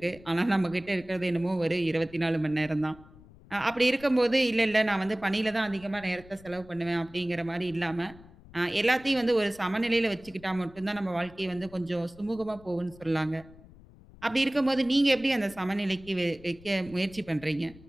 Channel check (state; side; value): noise; left; rumble, 22 dB below the sound